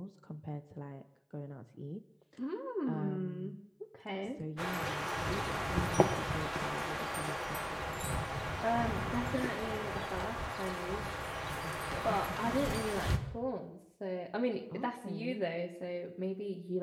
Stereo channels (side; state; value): both; identical; correlation 1.00